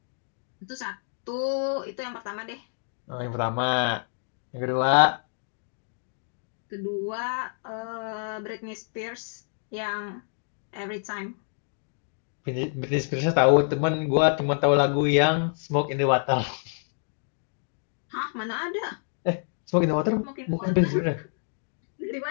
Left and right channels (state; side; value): silent; right; digital silence